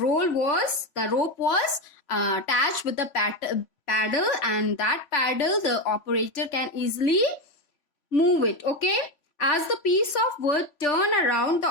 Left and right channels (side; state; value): right; late; 3.0 ms